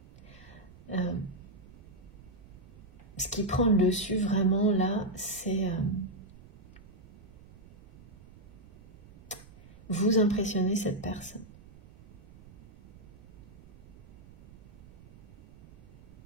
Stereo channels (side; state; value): right; noise; rumble, 21 dB below the sound